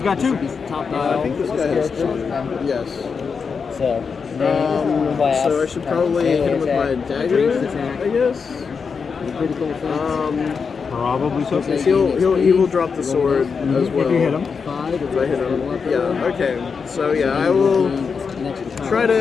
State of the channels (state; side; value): quieter; right; 5.6 dB